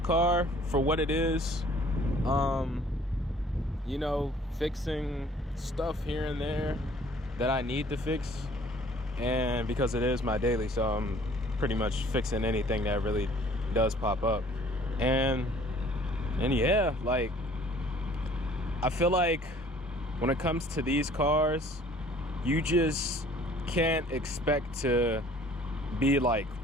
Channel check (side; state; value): both; normal; correlation 0.54